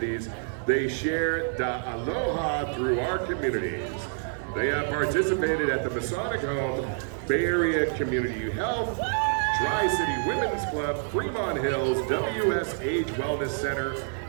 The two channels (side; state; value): left; silent; digital silence